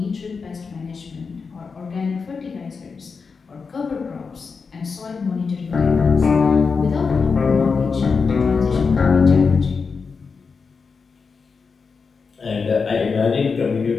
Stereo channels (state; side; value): quieter; right; 5.1 dB